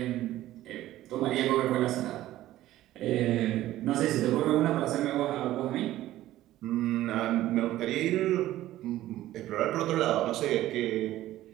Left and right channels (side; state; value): left; quieter; 14.7 dB